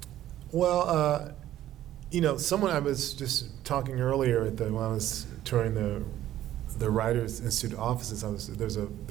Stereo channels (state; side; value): quieter; left; 13.0 dB